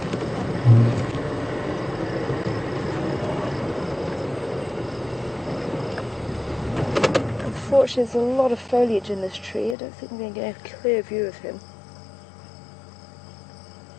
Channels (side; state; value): right; drops out; at 9.8 s